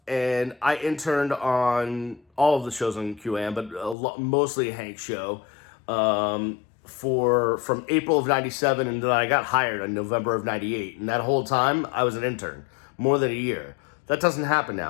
and I interned on all of the shows on QAM, but mostly Hank's show, from April of 97, and then I got hired in November of 98. And that whole time, I was an intern, more than a year. That doesn't happen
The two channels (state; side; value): drops out; right; at 4.0 s